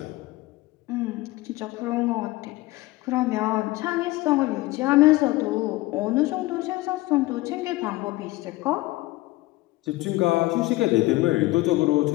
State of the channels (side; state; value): right; quieter; 19.3 dB